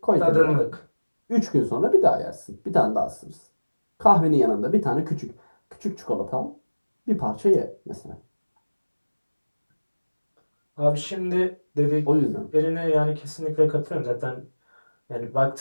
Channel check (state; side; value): inverted; both; correlation -1.00